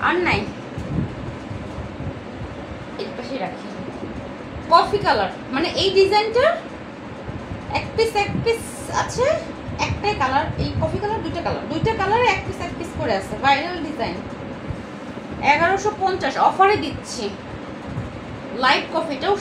আর নাই। এই পাশে রাখি কফি কালার, মানে এই ডিজাইনটার 1 পিস আছে, একটাই কালার। এই কফি কালার, দুইটা কালারে 1 পিস করে আছে। ভাইরাল ডিজাইন, 1150 অফারে দিচ্ছি। লাইট কফিটাও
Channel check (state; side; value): identical; both; correlation 1.00